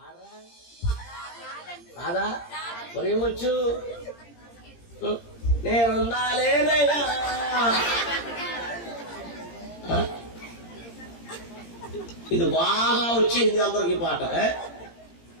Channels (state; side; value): late; right; 17 ms